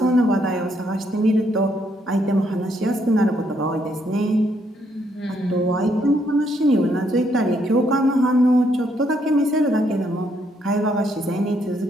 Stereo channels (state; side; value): normal; both; correlation 0.73